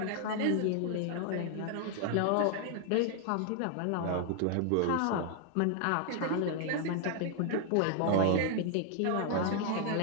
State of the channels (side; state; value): both; different; correlation 0.00